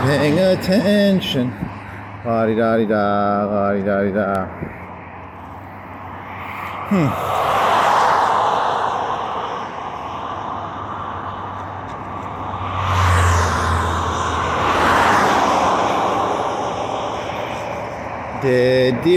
attention. La-di-da-di-da, la-di-da-di-da. Dead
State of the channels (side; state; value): both; identical; correlation 1.00